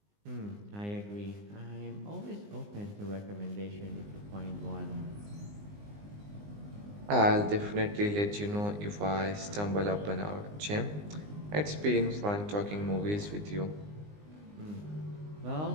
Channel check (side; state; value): left; late; 19 ms